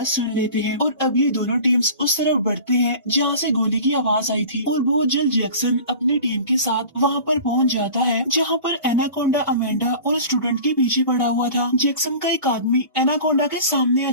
सुन लेते हैं। और अब ये दोनों टीम्स उस तरफ बढ़ते हैं जहाँ से गोली की आवाज आई थी, और बहुत जल्द जैक्सन अपनी टीम के साथ वहाँ पर पहुँच जाता है जहाँ पर एनाकोंडा अमेंडा और स्टूडेंट के पीछे पड़ा हुआ था। जैक्सन का एक आदमी एनाकोंडा के सामने आ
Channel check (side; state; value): both; inverted; correlation -0.39